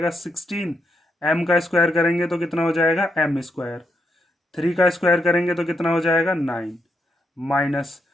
16, m का स्क्वायर करेंगे तो कितना हो जाएगा m स्क्वायर, 3 का स्क्वायर करेंगे तो कितना हो जाएगा 9 माइनस,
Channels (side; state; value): both; normal; correlation 0.81